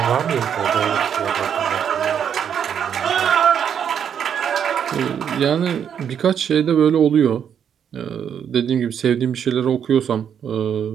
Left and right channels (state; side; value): quieter; left; 8.3 dB